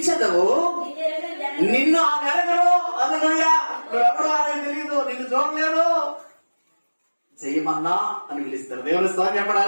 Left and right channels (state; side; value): inverted; both; correlation -1.00